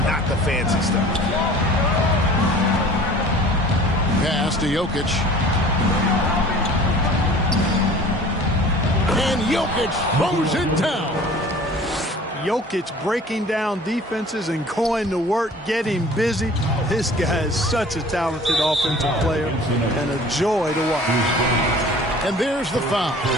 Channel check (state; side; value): normal; both; correlation 0.46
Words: not the fancy stuff. Pass to Jokic. And Jokic throws it down. Jokic breaking down defenses and going to work, getting busy. This guy is such a talented offensive player and a joy to watch. And there's the foul.